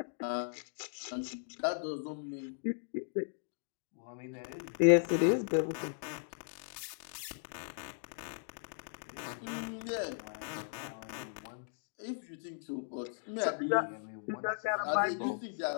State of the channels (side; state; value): right; silent; digital silence